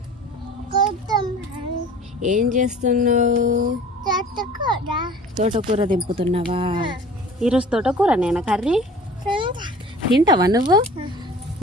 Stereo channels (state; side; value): normal; both; correlation 0.44